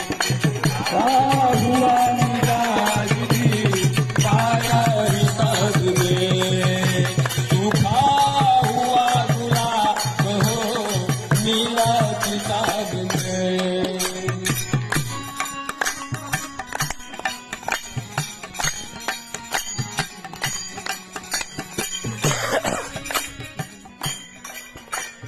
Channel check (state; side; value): identical; both; correlation 1.00